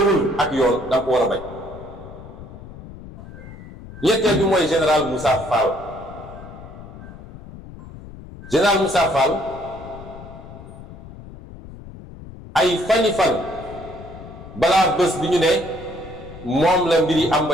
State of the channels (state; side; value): noise; left; rumble, 15 dB below the sound